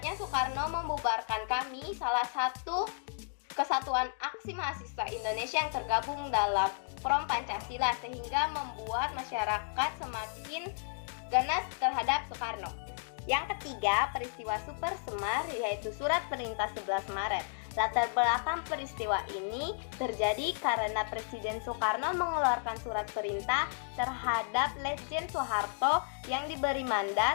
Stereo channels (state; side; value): silent; right; digital silence